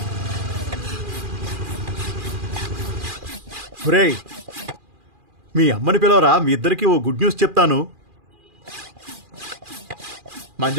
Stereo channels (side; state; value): left; late; 2.4 ms